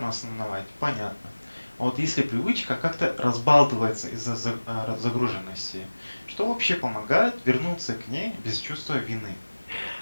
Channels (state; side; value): inverted; both; correlation -1.00